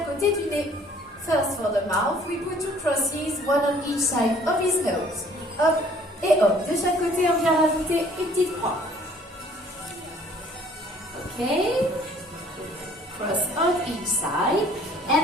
côté du nez. First, for the mouth, we put two crosses, one on each side of his nose. Hop et hop. De chaque côté, on vient rajouter une petite croix. Ok. Cross on each side.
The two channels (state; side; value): normal; both; correlation 0.56